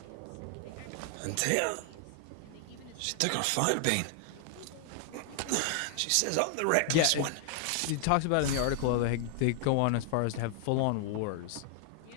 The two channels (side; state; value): both; different; correlation 0.00